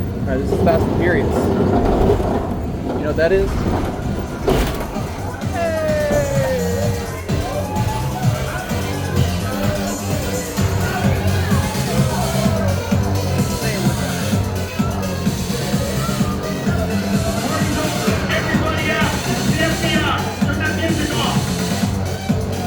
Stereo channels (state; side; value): identical; both; correlation 1.00